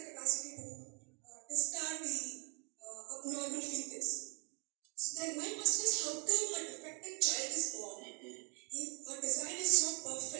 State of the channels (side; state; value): left; quieter; 34.7 dB